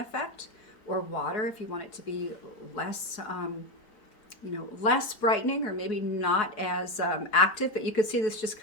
or water if you want it to be less less brightening, or maybe not as active. But you can see this just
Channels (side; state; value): right; late; 4.4 ms